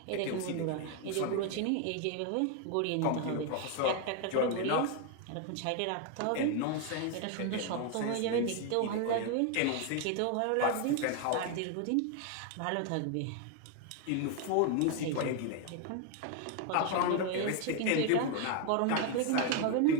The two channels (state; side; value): different; both; correlation 0.01